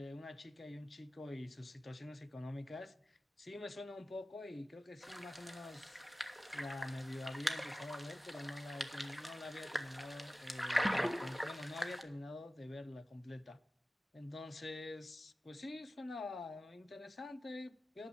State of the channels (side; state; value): both; normal; correlation 0.95